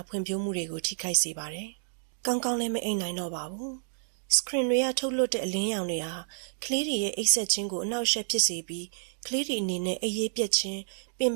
ဖွံ့ဖြိုးမှုတွေကိုထိခိုက်စေပါတယ်။ကောင်းကောင်းလည်းမအိပ်နိုင်တော့ပါဘူး။ screen တွေကထုတ်လွှတ်တဲ့အလင်းရောင်တွေဟာကလေးတွေရဲ့အိပ်စက်ခြင်းကိုအနှောက်အယှက်ဖြစ်စေပြီးကလေးတွေအနေနဲ့အိပ်ရေးပြတ်ခြင်းပင်ပ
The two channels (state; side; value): silent; left; digital silence